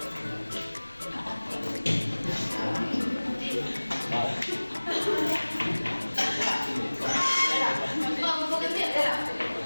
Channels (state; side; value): inverted; both; correlation -1.00